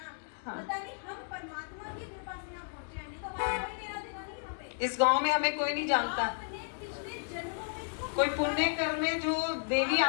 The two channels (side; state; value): right; silent; digital silence